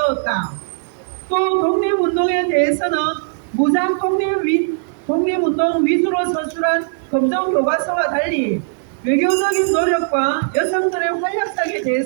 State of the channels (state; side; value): silent; left; digital silence